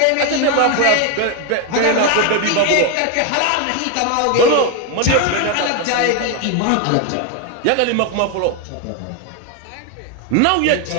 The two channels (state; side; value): different; both; correlation 0.01